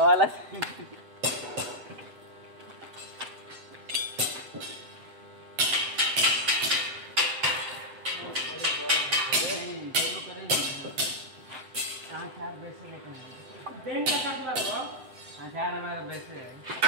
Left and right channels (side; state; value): left; late; 7.5 ms